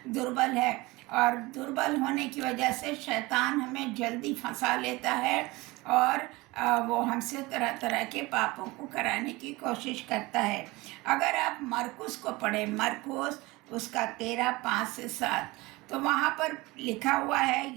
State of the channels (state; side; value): quieter; left; 22.0 dB